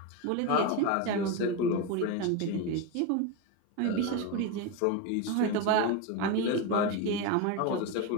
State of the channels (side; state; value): both; different; correlation 0.04